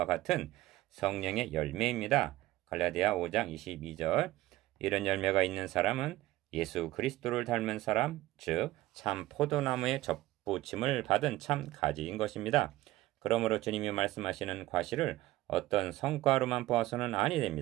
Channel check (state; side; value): quieter; left; 16.8 dB